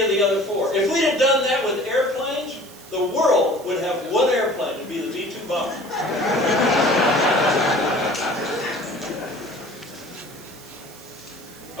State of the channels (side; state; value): right; noise; hiss, 20 dB below the sound